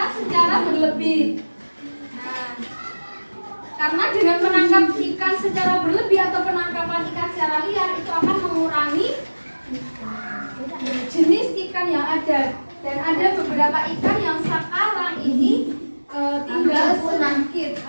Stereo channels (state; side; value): inverted; both; correlation -1.00